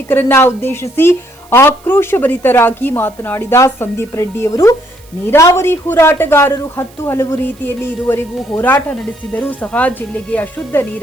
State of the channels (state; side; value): noise; right; hiss, 27 dB below the sound